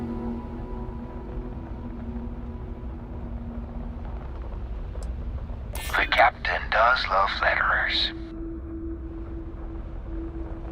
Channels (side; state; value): both; identical; correlation 1.00